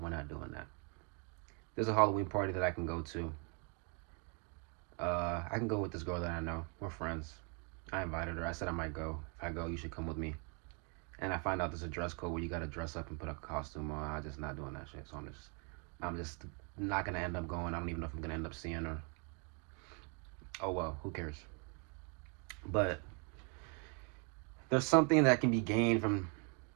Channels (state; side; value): quieter; left; 37.3 dB